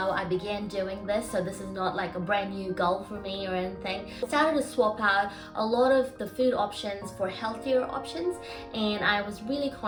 I began doing this, so this is not like a brand new goal for me or anything. I started to swap out a lot of the food options for healthier options, and I was really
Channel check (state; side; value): identical; both; correlation 1.00